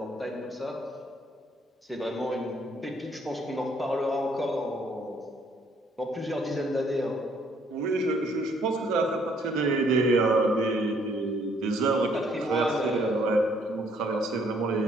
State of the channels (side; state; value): both; normal; correlation 0.65